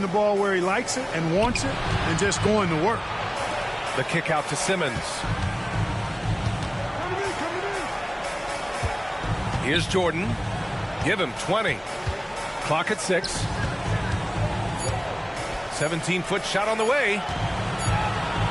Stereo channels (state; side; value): identical; both; correlation 1.00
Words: the ball where he likes it and wants it and just going to work. The kick out to Simmons. Here's Jordan. Give him 20. Clock at 6. 17-foot shot on the way.